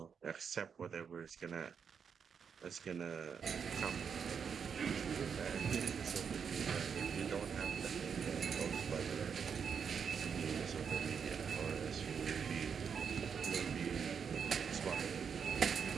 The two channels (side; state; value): left; quieter; 6.7 dB